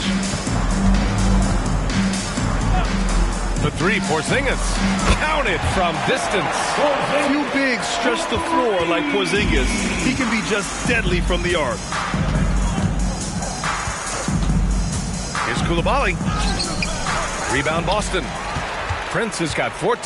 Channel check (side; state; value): both; identical; correlation 1.00